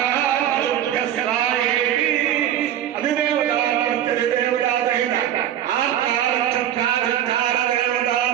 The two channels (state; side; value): quieter; left; 11.0 dB